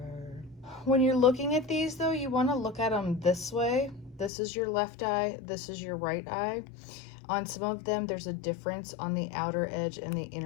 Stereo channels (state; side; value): drops out; right; at 4.3 s